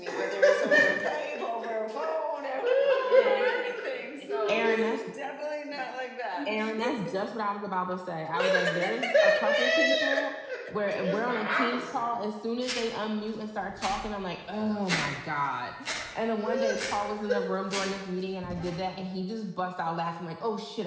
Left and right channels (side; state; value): both; identical; correlation 1.00